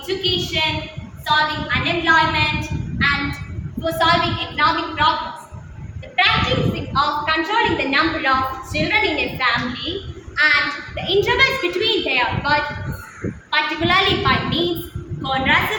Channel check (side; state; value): both; identical; correlation 1.00